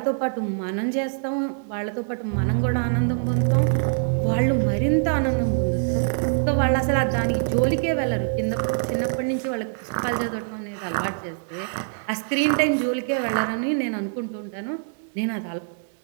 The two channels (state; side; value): silent; left; digital silence